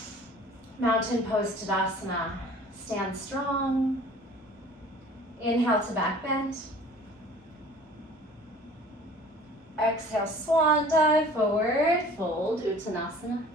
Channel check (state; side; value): normal; both; correlation 0.48